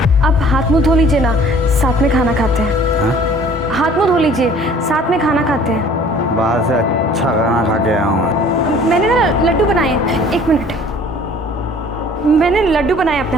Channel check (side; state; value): both; normal; correlation 0.51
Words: अब हाथ मुंह धो लीजिए ना, साथ में खाना खाते हैं। हाथ मुंह धो लीजिए, साथ में खाना खाते हैं। बाहर से अच्छा खाना खा के आया हूँ। मैंने ना लड्डू बनाए हैं, 1 मिनट। मैंने लड्डू बनाए